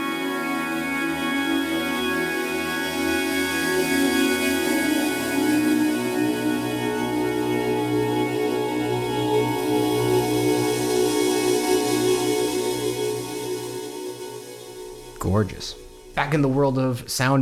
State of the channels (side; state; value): both; identical; correlation 1.00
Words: Gorgeous. Back in the world of sound